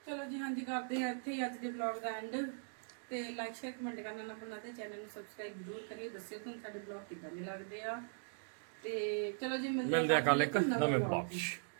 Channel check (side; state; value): left; silent; digital silence